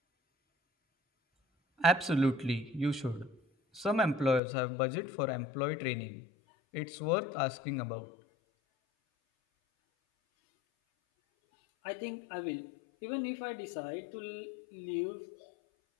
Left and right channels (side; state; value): right; drops out; at 4.4 s